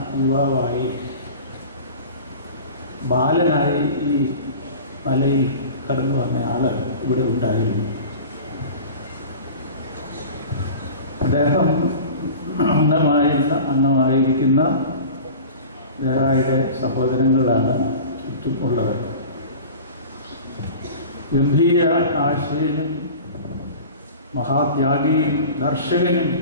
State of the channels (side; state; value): both; inverted; correlation -0.37